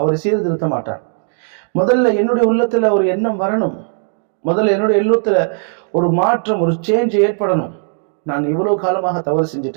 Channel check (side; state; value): left; silent; digital silence